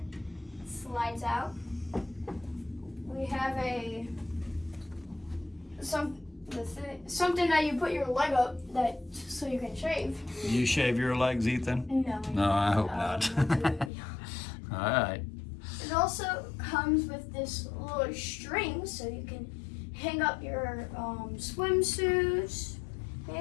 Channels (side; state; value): right; drops out; at 13.9 s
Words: It slides out. We have something that you put your leg up so you can shave. You shave your legs, Ethan? No. I hope not. All right. It also comes with this little string so you can hang up your swimsuits,